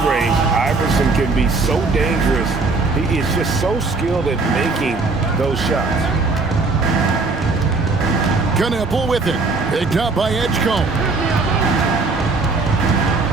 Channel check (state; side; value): quieter; left; 3.8 dB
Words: Iverson can be so dangerous. He is just so skilled at making those shots. Knueppel with it. Picked up by Edgecombe.